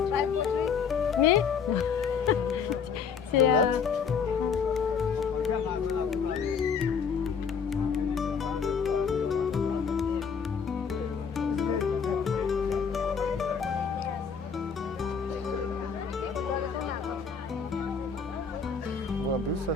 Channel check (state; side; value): quieter; right; 6.2 dB